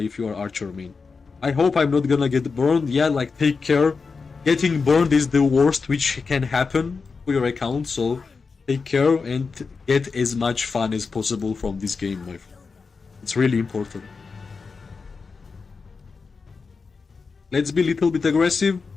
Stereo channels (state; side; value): quieter; right; 4.8 dB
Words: you are archer main. I hope I'm not gonna get burned. Yeah, like, take care. Getting burned is the worst which can happen to your account, so take care and get as much fun as possible from this game, my friend. It's really important. Let's be a little bit aggressive.